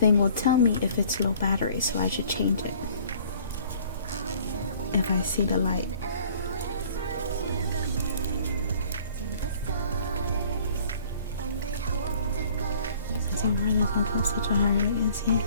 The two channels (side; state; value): both; inverted; correlation -0.53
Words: will tell me if it's low battery, so I should change it if I see the light. Somewhere this one goes such a high rate, is he?